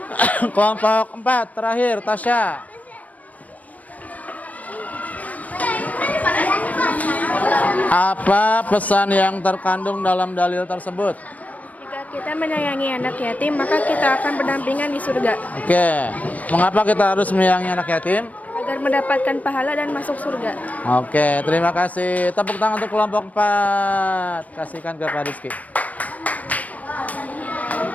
Kelompok 4 terakhir, Tasya. Apa pesan yang terkandung dalam dalil tersebut? Jika kita menyayangi anak yatim, maka kita akan berdampingan di surga. Oke, mengapa kita harus menyayangi anak yatim? Agar agar mendapatkan pahala dan masuk surga. Oke, terima kasih. Tepuk tangan untuk kelompok 4. Kasihkan ke Pak Rizky.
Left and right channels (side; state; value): right; late; 0.074 ms